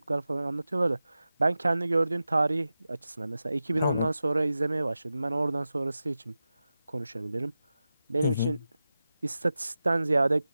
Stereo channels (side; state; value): both; inverted; correlation -0.93